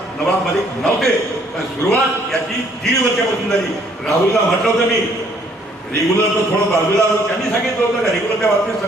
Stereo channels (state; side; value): normal; both; correlation 0.64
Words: नवाब मलिक नव्हते, पण सुरुवात याची 1.5 वर्षापासून झाली. राहुलला म्हटलं होतं मी रेग्युलर तर थोडं बाजूला, त्यांनी सांगितलं होतं का रेग्युलरच्या बाबतीत